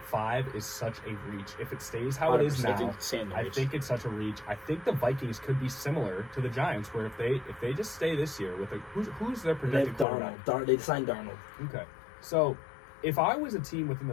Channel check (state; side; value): drops out; right; at 10.1 s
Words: 5 is such a reach. If it stays how it is 100%. now, I Reach. think it's such a reach. I think the Vikings could be similar to the Giants, where if they just stay this year with who's their They projected have quarterback? Darnold. They signed Darnold. Okay, so if I was a team within